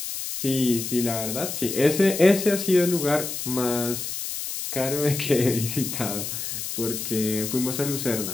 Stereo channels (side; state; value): left; noise; hiss, 5 dB below the sound